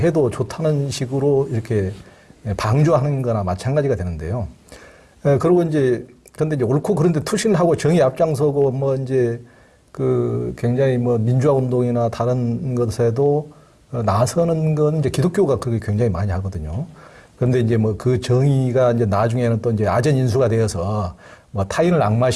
좋다는 식으로 이렇게 방조하는 거나 마찬가지가 되는데요. 그리고 이제 근데 이제 옳고 그런데 투신을 하고 정의 앞장서고 뭐 이제 그 굉장히 뭐 민주화 운동이나 다른 것에도 나서는 건 이제 기독교가 그게 굉장히 많이 하거든요. 그런데 이제 뭐 그 정의가 이제 나중에는 또 이제 아전인수가 되어서 뭐 타인을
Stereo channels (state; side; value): identical; both; correlation 1.00